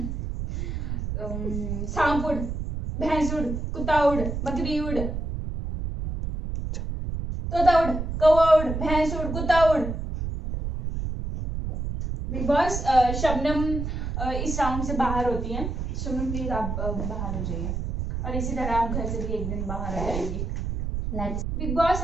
सांप उड़, भैंस उड़, कुत्ता उड़, बकरी उड़, तोता उड़, कौवा उड़, भैंस उड़, कुत्ता उड़। बिग बॉस, शबनम इस राउंड से बाहर होती हैं। शबनम प्लीज आप बाहर हो जाइए और इसी तरह आप घर से भी एक दिन बाहर आ जाएंगी। बिग बॉस,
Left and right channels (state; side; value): noise; right; rumble, 3 dB below the sound